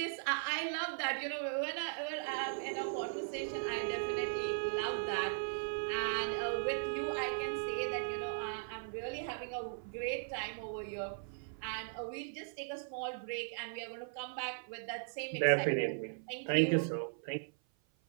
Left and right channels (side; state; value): left; silent; 52 dB below the other